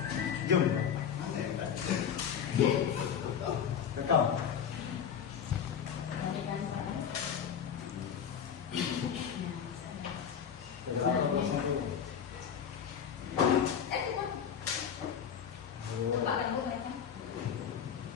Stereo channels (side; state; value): right; quieter; 8.0 dB